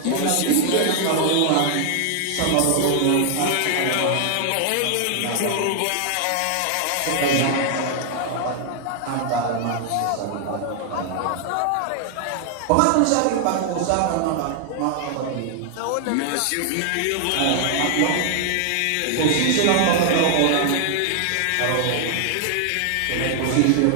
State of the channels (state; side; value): different; both; correlation 0.00